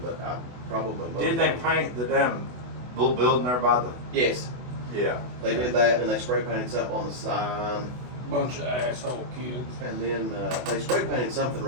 but I probably most Didn't they of them- paint the damn little building there by the? Yes, Yeah. they did that, and they spray painted something on the sign. Bunch of asshole kids. And then they spray painted something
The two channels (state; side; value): late; left; 24 ms